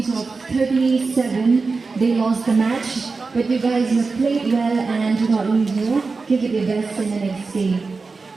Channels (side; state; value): left; quieter; 4.2 dB